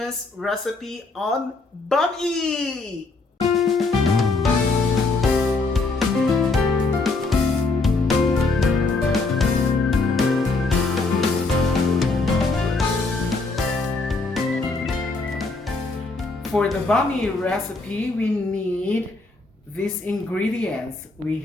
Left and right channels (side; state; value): right; quieter; 3.6 dB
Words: recipe on bami. For the bami recipe, we need these ingredients. We